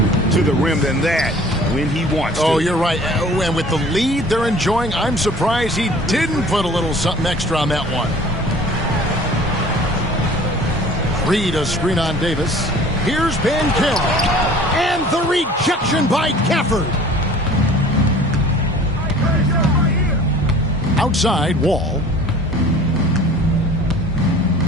to the rim than that when he wants to. Oh, you're right. And with the lead they're enjoying, I'm surprised he didn't put a little something extra on that one. Reed a screen on Davis. Here's Banchero. And the rejection by Gafford. Outside, Wall.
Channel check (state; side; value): normal; both; correlation 0.47